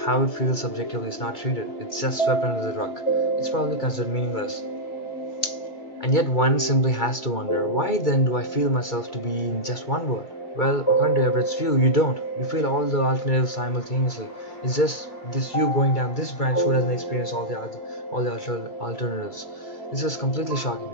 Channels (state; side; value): late; right; 2.3 ms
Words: how it feels subjectively is not treated. It's just swept under the rug. It's probably considered meaningless. And yet one simply has to wonder, why then do I feel myself to be in just one word? Well, according to Everett's view, you don't. You feel all the alternatives simultaneously. It's just this you going down this branch who doesn't experience all the alternatives. This is completely shocking.